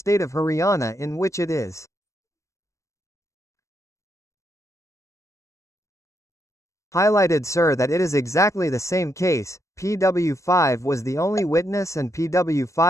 of Haryana in which it is highlighted sir that it is exactly the same case. PW5 was the only witness and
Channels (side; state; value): right; late; 0.15 ms